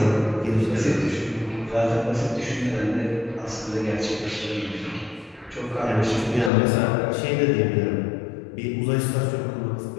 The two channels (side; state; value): right; drops out; at 6.5 s